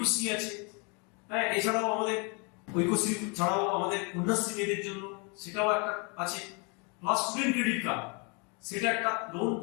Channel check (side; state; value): right; quieter; 33.3 dB